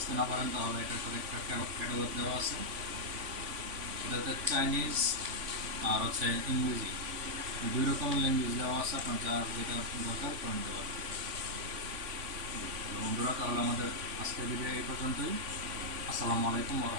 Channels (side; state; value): left; late; 3.5 ms